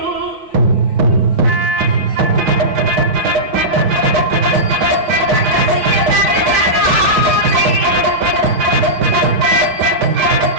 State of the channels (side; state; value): left; late; 6.4 ms